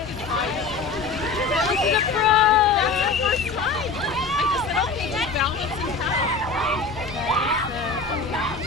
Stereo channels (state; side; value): quieter; right; 4.2 dB